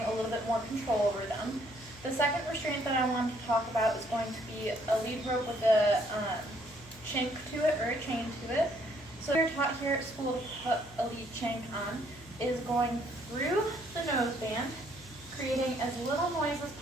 a little bit more control over them. The second restraint that I want to talk about is going to be a lead rope with a chink to it or a chain to it. So we're taught here at school to put a lead chink on is going through the noseband, creating as little noise as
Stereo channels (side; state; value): left; noise; hum, 21 dB below the sound